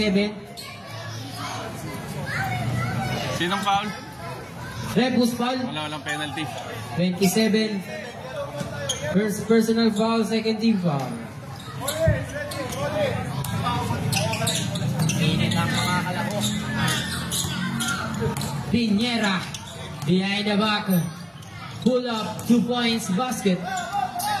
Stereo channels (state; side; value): identical; both; correlation 1.00